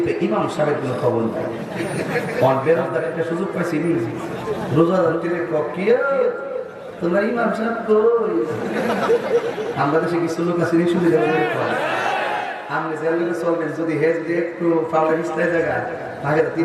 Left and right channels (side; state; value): both; identical; correlation 1.00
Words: ইমাম সাহেবের কোনো খবর নাই। আর বেরোজগার একটা সুযোগ পাইছি রোজাদার কি তোমরা ইমাম সাহেব কই আমরা দেশে কিছু লোক আছে সুবিধা আপনি জেলে চলবেন যদি হেজ দিয়ে একটু পাওয়ার ইস্তায় জায়গা আগে